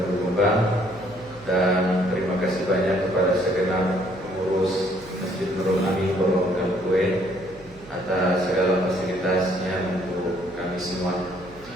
Jombang, dan terima kasih banyak kepada segenap pengurus Masjid Nurul Amin Pondok Gangkuin atas segala fasilitasnya untuk kami semua.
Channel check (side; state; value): right; noise; hum, 22 dB below the sound